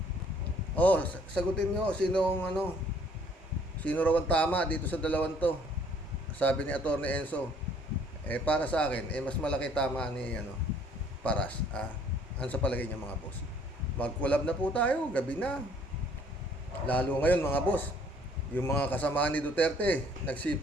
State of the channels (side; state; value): both; normal; correlation 0.60